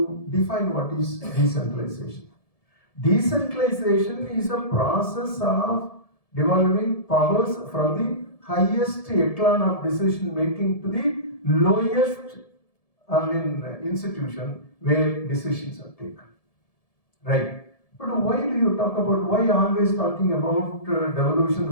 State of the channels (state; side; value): late; right; 1.7 ms